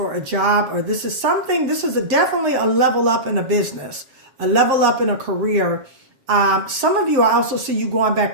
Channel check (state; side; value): late; left; 7.3 ms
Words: a job, or this is definitely a level up in a business, a level up in a career. Some of you, I also see you going